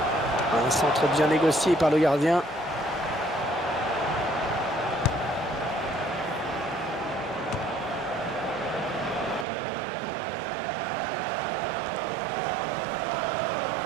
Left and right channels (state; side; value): drops out; left; at 9.5 s